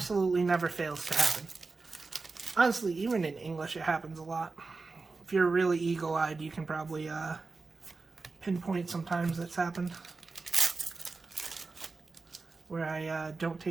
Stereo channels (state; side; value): quieter; left; 4.0 dB